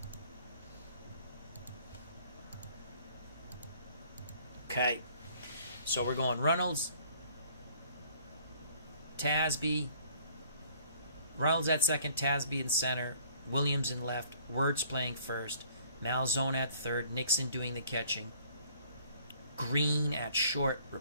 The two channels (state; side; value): inverted; both; correlation -0.57